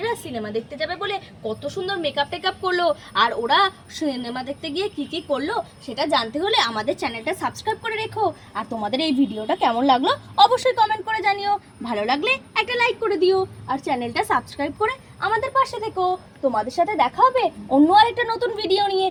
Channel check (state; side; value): identical; both; correlation 1.00